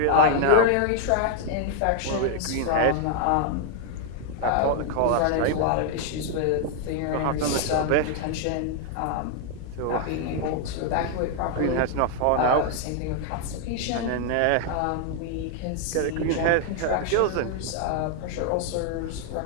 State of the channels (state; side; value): different; both; correlation 0.00